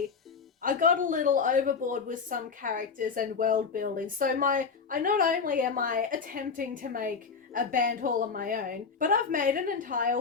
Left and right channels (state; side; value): quieter; right; 5.4 dB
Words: I got a little overboard with some characters and world building. So not only am I attempting to make a band all on my own, but I've made an